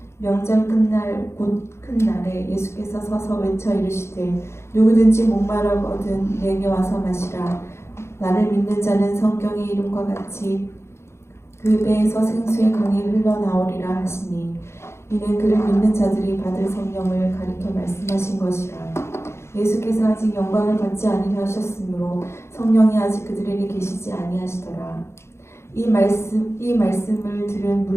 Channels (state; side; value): late; right; 0.13 ms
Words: 명절 끝날 곧 큰 날에 예수께서 서서 외쳐 이르시되 누구든지 목마르거든 내게 와서 마시라. 나를 믿는 자는 성경의 이름과 같이 그 배에서 생수의 강이 흘러나오리라 하시니 이는 그를 믿는 자들이 받을 성령을 가리켜 말씀하신 것이라. 예수께서 아직 영광을 받지 아니하셨으므로 하셨으므로 성령이 아직 그들에게 계시지 아니하시더라. 이 말씀을 들은